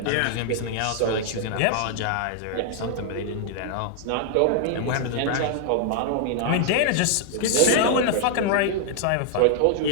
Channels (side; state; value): both; different; correlation -0.01